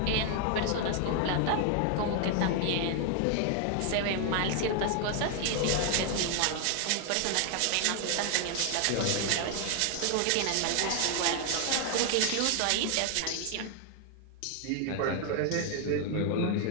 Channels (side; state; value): both; different; correlation 0.00